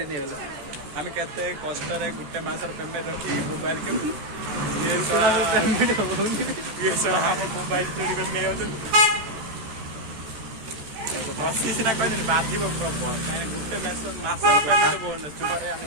नहीं है आम केते कष्ट गोटे मसर पेमेंट रखी मोबाइल के पेमेंट हम मोबाइल चोरी कर बसी सीना कह बाधिब प्रबल कहीं गोटे मसर पेमेंट बहुत चुपारे आम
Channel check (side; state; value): left; late; 14 ms